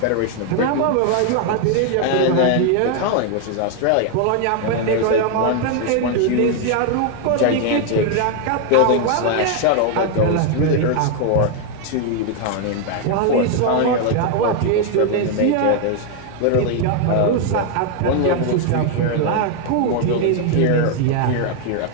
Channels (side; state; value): both; different; correlation 0.00